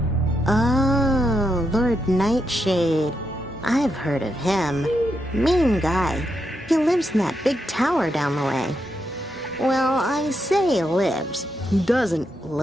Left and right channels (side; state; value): both; normal; correlation 0.82